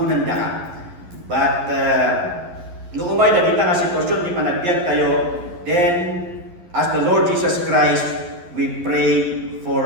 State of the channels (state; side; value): late; left; 11 ms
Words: da ka. But, no umay na kita nga sitwasyon, di panagbiag tayo, then, as the Lord Jesus Christ, we pray for